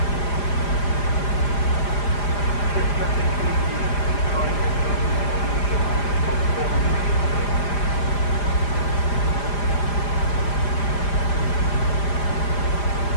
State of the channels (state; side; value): late; right; 4.9 ms